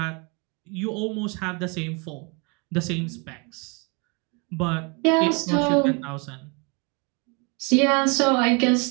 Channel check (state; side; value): quieter; left; 31.3 dB